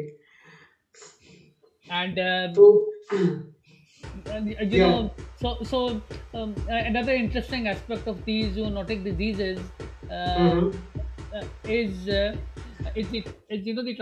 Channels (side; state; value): both; identical; correlation 1.00